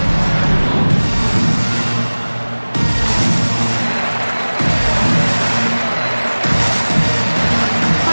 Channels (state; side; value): inverted; both; correlation -1.00